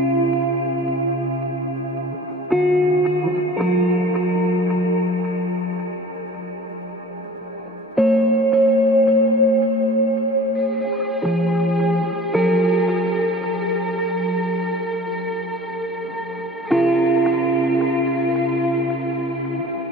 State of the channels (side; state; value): both; normal; correlation 0.45